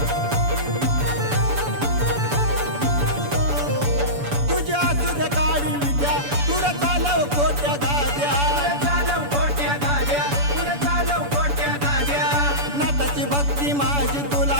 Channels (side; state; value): left; late; 7.0 ms